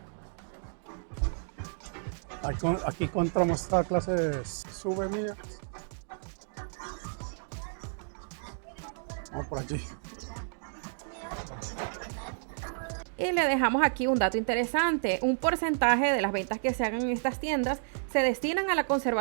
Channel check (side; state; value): left; silent; digital silence